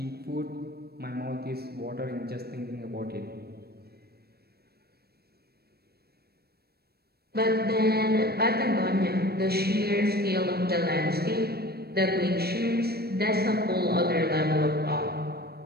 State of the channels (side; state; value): left; late; 0.46 ms